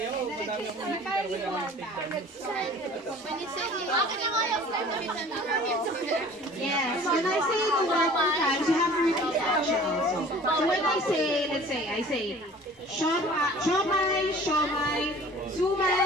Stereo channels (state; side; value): normal; both; correlation 0.47